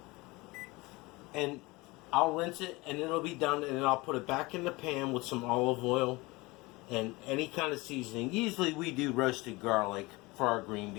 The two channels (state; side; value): quieter; right; 23.1 dB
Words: And I'll rinse it, and it'll be done, and then I'll put it back in the pan with some olive oil and any kind of seasoning. Usually we do roasted garlic for our green